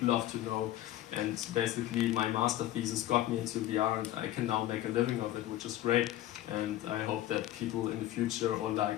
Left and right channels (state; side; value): quieter; right; 14.0 dB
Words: love to know. And basically, my master thesis got me into VR, and I can now make a living of it, which is great. And I hope that people in the future, or